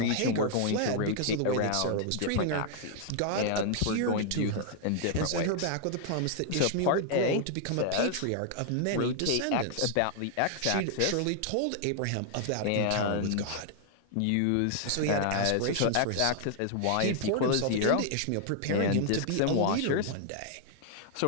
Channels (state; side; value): different; both; correlation 0.00